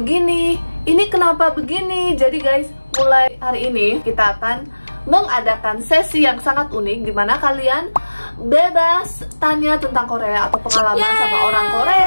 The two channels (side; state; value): both; inverted; correlation -1.00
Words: ini kenapa begini?" Jadi guys, mulai hari ini kita akan mengadakan sesi yang sangat unik di mana kalian bebas tanya tentang Korea atau pengalaman sama orang